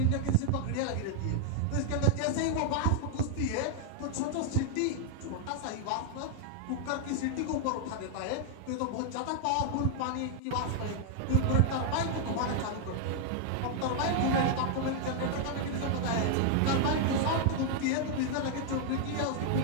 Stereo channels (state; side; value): different; both; correlation 0.00